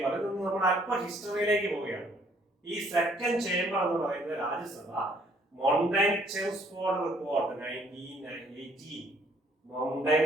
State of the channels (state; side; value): normal; both; correlation 0.63